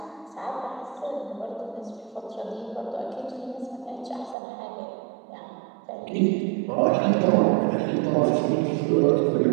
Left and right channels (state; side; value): drops out; left; at 4.4 s